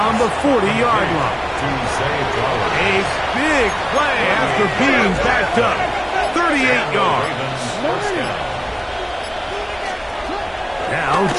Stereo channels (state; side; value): identical; both; correlation 1.00